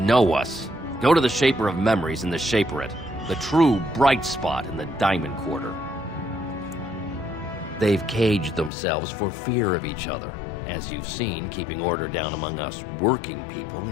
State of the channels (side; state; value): right; drops out; at 8.7 s